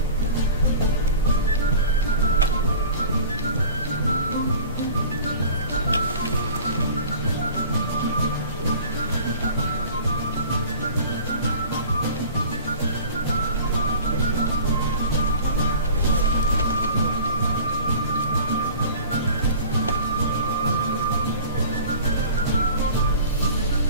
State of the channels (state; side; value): inverted; both; correlation -0.42